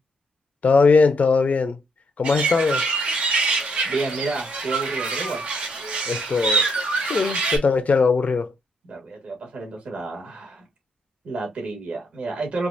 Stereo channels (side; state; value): both; normal; correlation 0.75